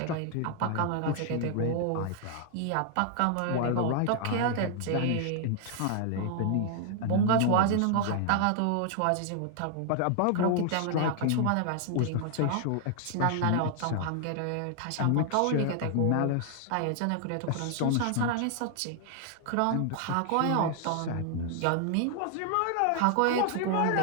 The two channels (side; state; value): both; different; correlation 0.00